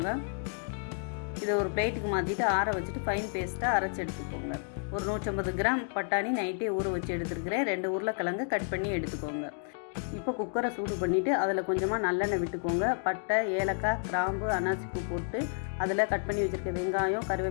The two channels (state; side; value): silent; right; 57 dB below the other